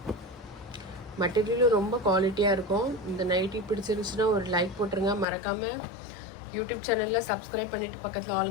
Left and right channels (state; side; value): drops out; right; at 5.2 s